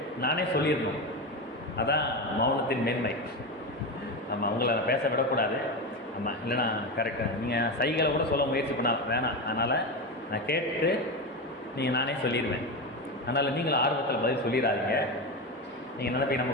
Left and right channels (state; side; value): normal; both; correlation 0.18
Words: நானே சொல்லிடணும். அதான் மௌனத்தின் மேன்மை. ஆமாம், உங்களை நான் பேச விடக்கூடாது. ஆமாம், இல்லைனா கரெக்டாக நீங்கள் சைகளை கூட சொல்ல முயற்சி பண்ண வேணாம். அதனால் நான் கேட்டு நானே சொல்லிடுவேன். அதனால் நீங்களும் ஆர்வத்தில் பதில் சொல்லிடாதீங்க. நீங்கள் நினைப்பீங்க